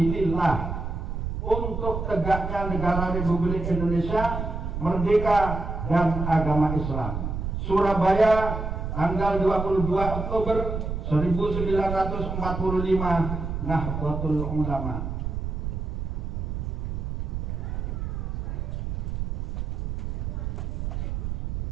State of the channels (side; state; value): right; noise; rumble, 3 dB below the sound